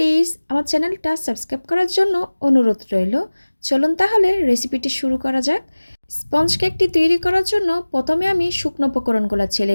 আমার চ্যানেলটা সাবস্ক্রাইব করার জন্য অনুরোধ রইল। চলুন তাহলে রেসিপিটি শুরু করা যাক। স্পঞ্জ কেকটি তৈরি করার জন্য প্রথমে আমি শুকনো উপকরণগুলো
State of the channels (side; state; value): both; inverted; correlation -1.00